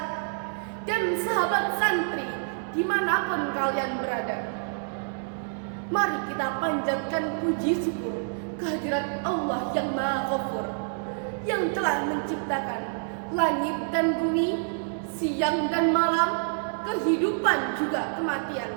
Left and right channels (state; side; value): silent; left; digital silence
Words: dan sahabat santri dimanapun kalian berada. Mari kita panjatkan puji syukur kehadirat Allah yang Maha Ghafur, yang telah menciptakan langit dan bumi, siang dan malam, kehidupan juga